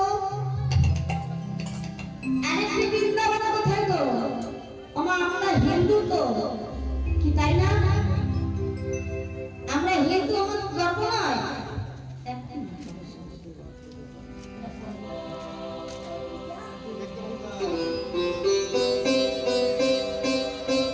আরেকটি বৃন্দাবন কোথায় গো? আমরা হিন্দু তো কি, তাই না? আমরা হিন্দু, আমার গর্ব নয়?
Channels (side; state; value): both; identical; correlation 1.00